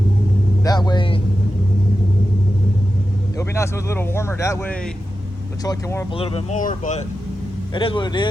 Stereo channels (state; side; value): normal; both; correlation 0.91